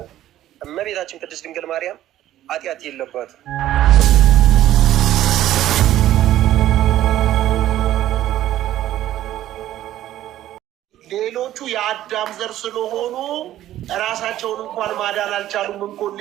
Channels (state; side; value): quieter; left; 13.2 dB